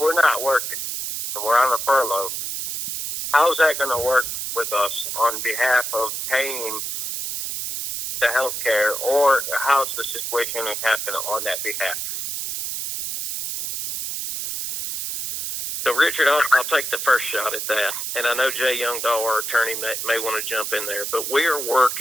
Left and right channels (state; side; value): noise; right; hiss, 4 dB below the sound